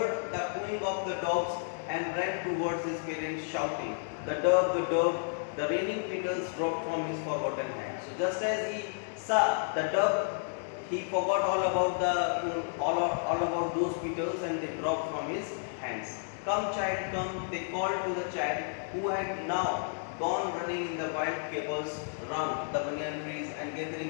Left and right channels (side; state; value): right; silent; 57 dB below the other